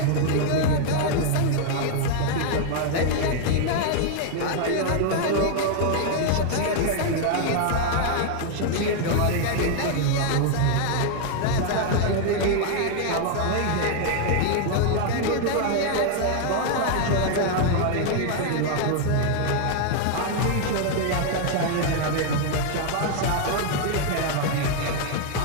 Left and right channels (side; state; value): both; different; correlation 0.00